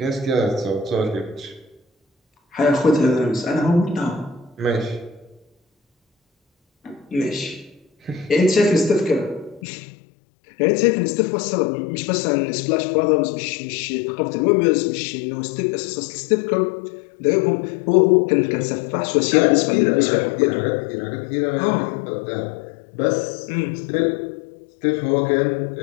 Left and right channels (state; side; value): drops out; right; at 9.6 s